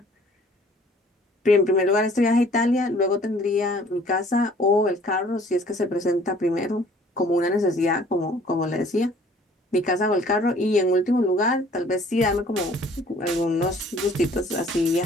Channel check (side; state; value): both; normal; correlation 0.55